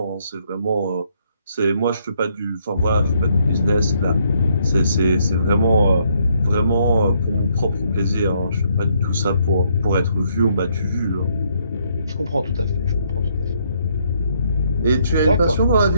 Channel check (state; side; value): inverted; both; correlation -0.71